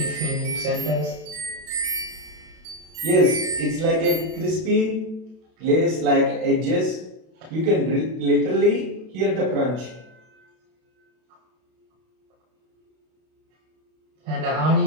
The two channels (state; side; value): late; left; 32 ms